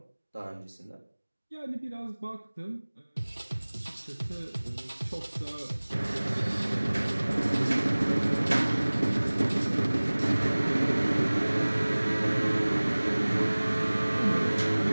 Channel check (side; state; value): both; inverted; correlation -1.00